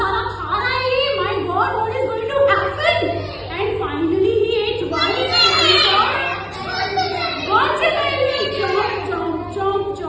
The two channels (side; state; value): both; identical; correlation 1.00